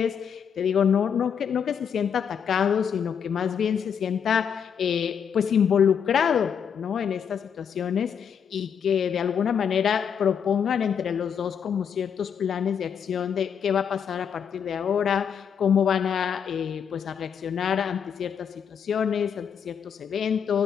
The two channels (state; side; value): quieter; right; 7.5 dB